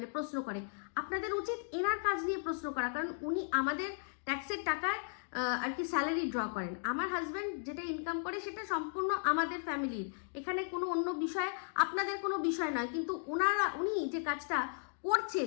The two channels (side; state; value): right; silent; digital silence